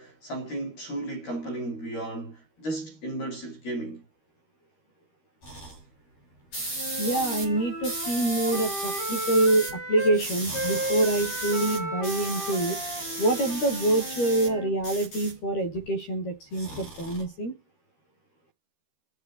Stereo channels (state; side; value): late; right; 13 ms